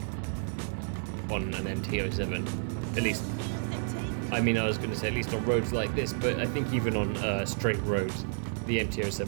on an MT-07, at least. I mean, I was going to say at least on roads like this, but I think even on straight roads, the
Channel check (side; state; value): left; silent; digital silence